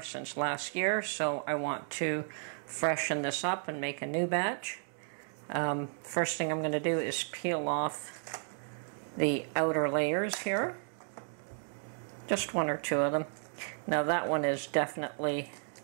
since last year, so I want to freshen this up and make a new batch. First thing I'm going to do is peel off the outer layers here. Just one or two of them. Now that one is definitely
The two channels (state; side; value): silent; left; 55 dB below the other